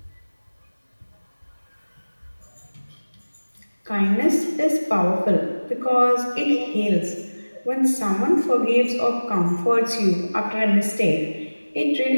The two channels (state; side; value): inverted; both; correlation -1.00